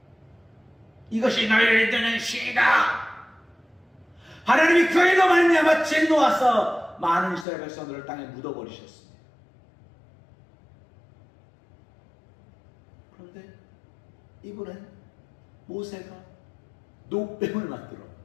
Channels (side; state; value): right; drops out; at 7.5 s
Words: 이것이 너희를 드는 신이다. 하나님이 그에도 말미암아 진노하사 많은 이스라엘 백성들을 땅에 묻어버리셨습니다. 그런데 이번엔 모세가 노뱀을 만들어